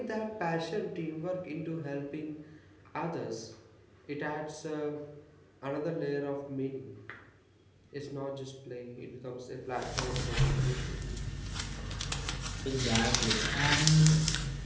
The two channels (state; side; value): identical; both; correlation 1.00